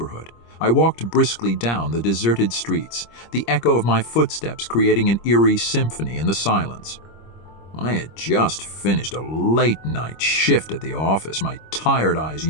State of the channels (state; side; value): late; right; 25 ms